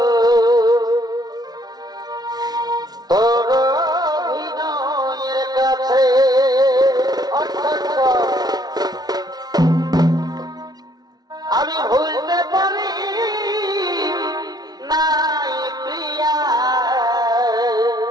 তোর অভিনয়ের কাছে আমি ভুলতে পারি নাই প্রিয়া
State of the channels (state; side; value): late; left; 0.19 ms